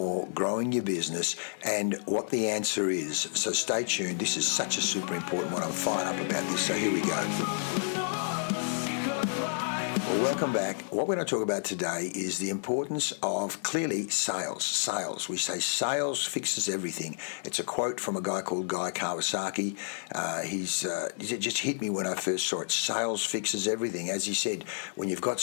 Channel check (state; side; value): silent; right; digital silence